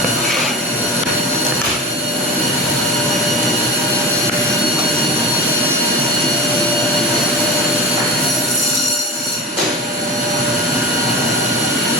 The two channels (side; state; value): both; normal; correlation 0.31